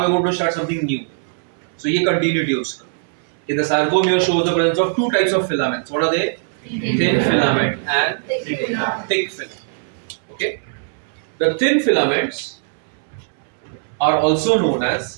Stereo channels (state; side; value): silent; left; 66 dB below the other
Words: are going to start something new. So ये कंटिन्यूटी है उसका. The sarcomere shows the presence of two types of filaments. What are they? Thin filament and thick filament. Okay. The thin filaments are also known